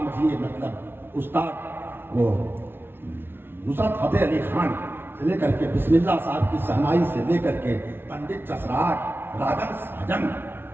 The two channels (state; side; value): late; left; 0.11 ms